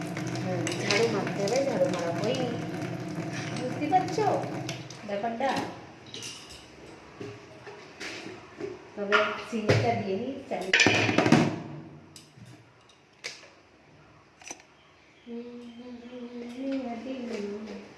ঝাড়ু মারতে হবে, ঝাড়ু মারা হয়নি, বুঝতে পারছো ব্যাপারটা। তবে চিনিটা দিয়ে নিই, চালিয়ে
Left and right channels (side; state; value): both; identical; correlation 1.00